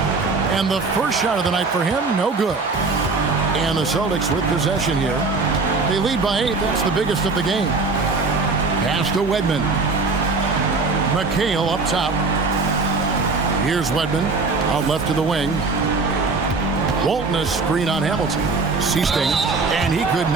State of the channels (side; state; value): left; quieter; 4.0 dB